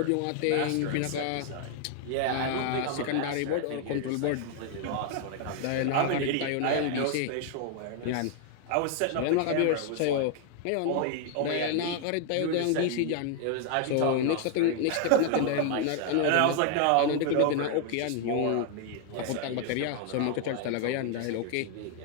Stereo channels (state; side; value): different; both; correlation 0.00